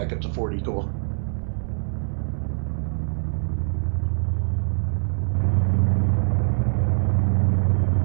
up to 40, cool.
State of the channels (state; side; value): silent; left; 63 dB below the other